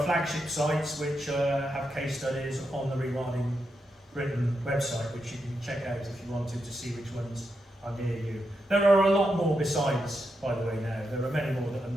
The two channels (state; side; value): normal; both; correlation 0.85